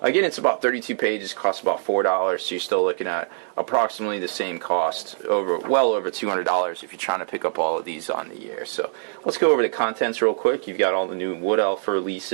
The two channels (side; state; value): left; silent; digital silence